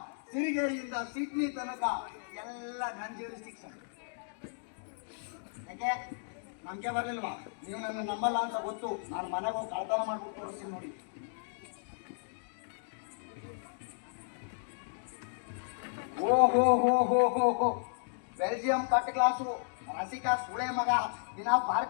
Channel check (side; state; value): right; silent; digital silence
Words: ಸಿರಿಗೇರಿಯಿಂದ ಸಿಡ್ನಿ ತನಕ ಎಲ್ಲ ನನ್ನ ಜ್ಯೂರಿಸ್ಡಿಕ್ಷನ್. ಯಾಕೆ ನಂಬಿಕೆ ಬರ್ಲಿಲ್ವಾ? ನೀವು ನನ್ನ ನಂಬಲ್ಲ ಅಂತ ಗೊತ್ತು. ನಾನು ಮನೆಗೆ ಹೋಗಿ ಕಳ್ತನ ಮಾಡ್ಬಿಟ್ಟು ತೋರಿಸ್ತೀನಿ ನೋಡಿ. ಓ ಹೋ ಹೋ ಹೋ ಹೋ ಹೋ, ಬೆಲ್ಜಿಯಂ ಕಟ್ ಕ್ಲಾಸು, ರಸಿಕಾ ಸುಳೆ ಮಗ ದಿನ